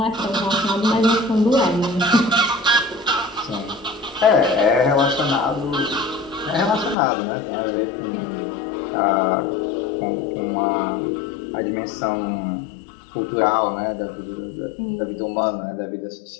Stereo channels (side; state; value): right; drops out; at 7.0 s